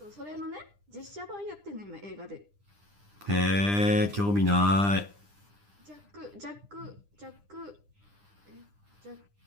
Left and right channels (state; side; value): late; left; 9.9 ms